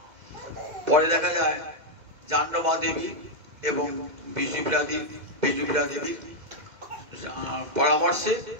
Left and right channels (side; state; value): left; late; 2.0 ms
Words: পরে দেখা যায় জাহ্নবী দেবী এবং বিষ্ণুপ্রিয়া দেবীর